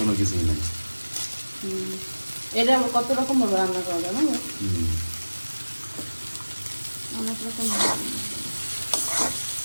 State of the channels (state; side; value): inverted; both; correlation -1.00